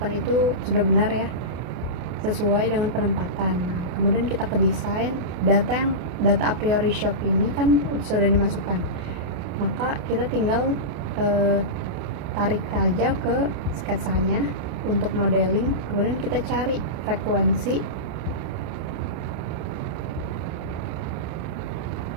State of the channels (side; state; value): left; late; 28 ms